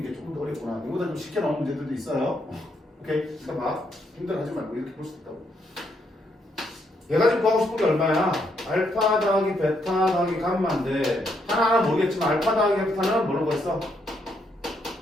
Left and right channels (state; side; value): normal; both; correlation 0.75